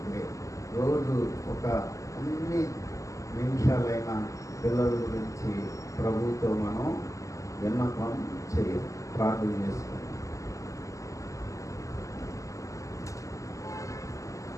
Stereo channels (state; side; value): late; right; 0.16 ms